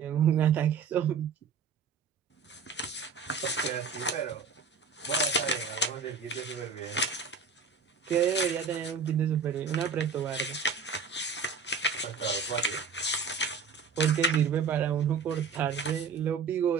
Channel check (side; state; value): left; quieter; 5.5 dB